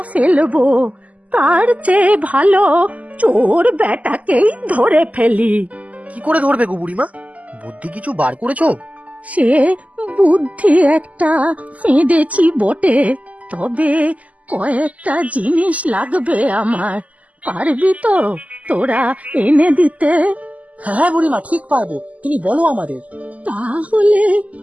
ফেলবো? তার চেয়ে ভালো চোর বেটাকেই ধরে ফেলি। কি করে ধরবে গো বুড়িমা? বুদ্ধি কিছু বার করেছো? সে বুদ্ধি একটা ফেঁদেছি বটে, তবে কয়েকটা জিনিস লাগবে আমার। পারবি তো তোরা এনে দিতে? হ্যাঁ বুড়িমা, ঠিক পারবো, তুমি বলো আমাদের। তাহলে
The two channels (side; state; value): left; late; 0.072 ms